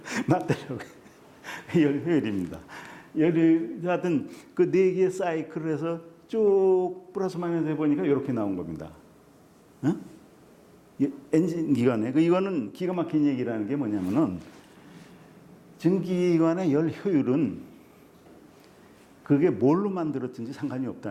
맞더라고요. 열 효율입니다. 열이 하여튼 그 네 개의 사이클을 해서 쭉 플러스 마이너스 해보니까 이렇게 나온 겁니다. 어? 엔진 기관에 이거는 기가 막힌 얘기라는 게 뭐냐면은 전기기관의 열 효율은 그게 뭘로 만들었든지 상관이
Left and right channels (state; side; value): identical; both; correlation 1.00